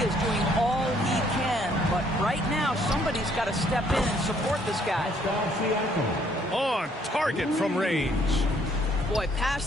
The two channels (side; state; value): both; normal; correlation 0.65